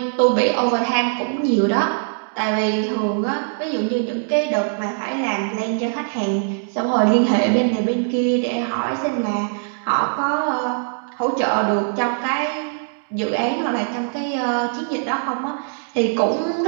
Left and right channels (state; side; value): silent; left; digital silence